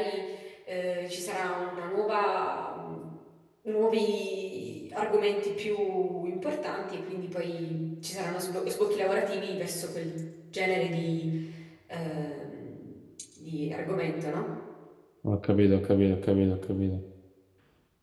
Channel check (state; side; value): identical; both; correlation 1.00